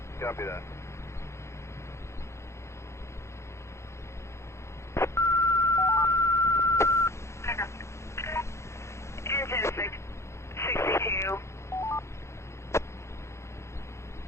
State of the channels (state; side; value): late; right; 0.13 ms